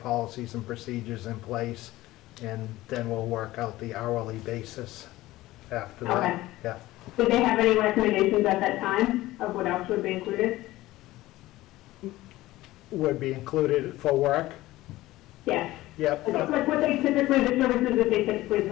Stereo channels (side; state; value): right; quieter; 17.2 dB